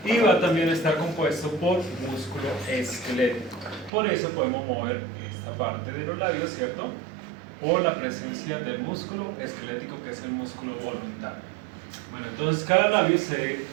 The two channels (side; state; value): left; drops out; at 3.9 s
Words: Y va también a estar compuesto por músculo esquelético. Por eso podemos mover esta parte de los labios, ¿cierto? Por la presencia del músculo esquelético, que es el músculo voluntario. Bueno, entonces cada labio